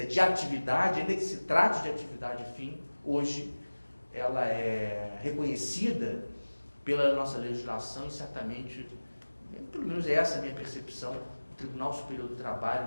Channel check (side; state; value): both; inverted; correlation -1.00